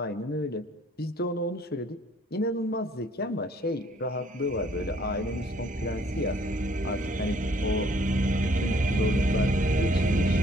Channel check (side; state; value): both; normal; correlation 0.61